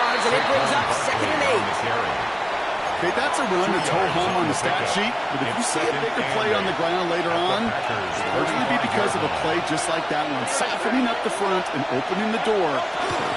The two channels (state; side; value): identical; both; correlation 1.00